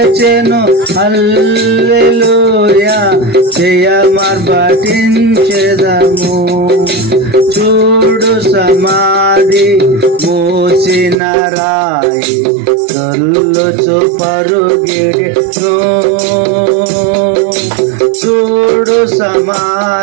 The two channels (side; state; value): left; drops out; at 11.2 s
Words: హల్లెలూయా జయమా పఠించెదము చూడు సమాధి మోసిన రాయి దొల్లుచు పరుగిడెను చూడు